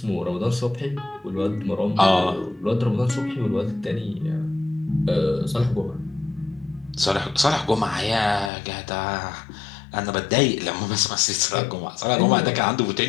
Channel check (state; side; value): drops out; right; at 8.5 s